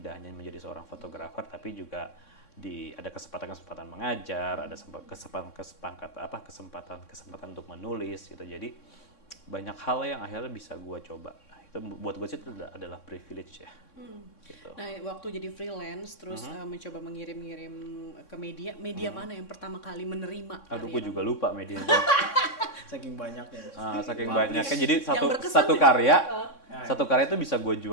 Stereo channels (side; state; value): right; late; 3.6 ms